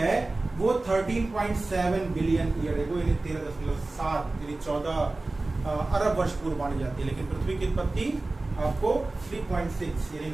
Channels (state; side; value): quieter; left; 3.1 dB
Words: वो 13.7 बिलियन ईयर एगो, यानी 13.7 यानी 14 अरब वर्ष पूर्व मानी जाती है। लेकिन पृथ्वी की उत्पत्ति आपको 3.6 यानी